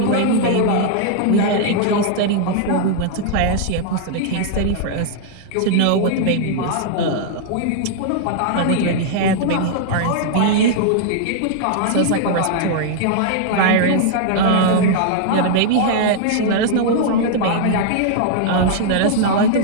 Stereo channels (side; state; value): both; different; correlation -0.01